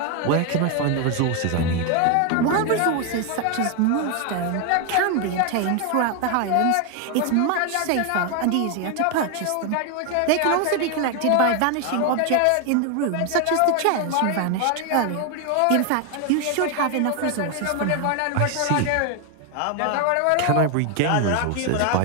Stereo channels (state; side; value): different; both; correlation 0.01